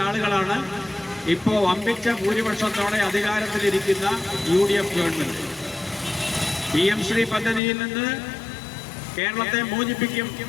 ആളുകളാണ് ഇപ്പോൾ വമ്പിച്ച ഭൂരിപക്ഷത്തോടെ അധികാരത്തിലിരിക്കുന്ന UDF ഗവൺമെന്റ്. PM ശ്രീ പദ്ധതിയിൽ നിന്ന് കേരളത്തെ മോചിപ്പിക്കും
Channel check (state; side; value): drops out; right; at 7.6 s